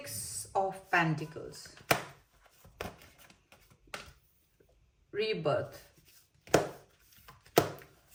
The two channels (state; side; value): identical; both; correlation 1.00